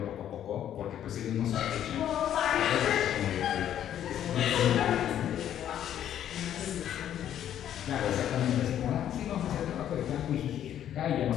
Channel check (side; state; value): right; quieter; 10.6 dB